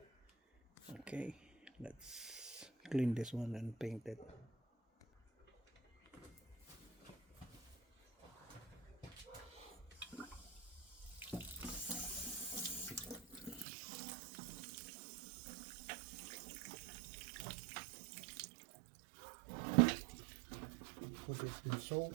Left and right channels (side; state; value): left; drops out; at 13.7 s